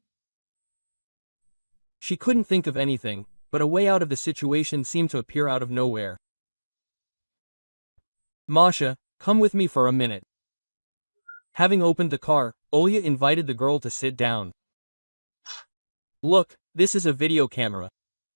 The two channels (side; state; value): both; inverted; correlation -1.00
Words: She couldn't think of anything, but a way out of the situation seemed to appear out of nowhere. "Masha, come with me for a minute. Having opened the car, Olga invited the girl to sit down. Look, this is a video camera.